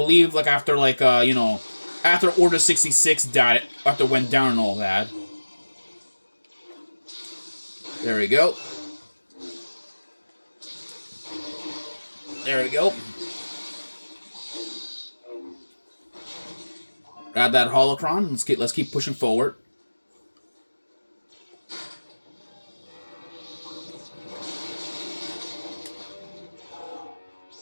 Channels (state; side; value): inverted; both; correlation -1.00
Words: like, after, like, you know, after Order 66 died, after went down and all that. There we go. There we go. Grab that holocron. Let's keep pushing forward.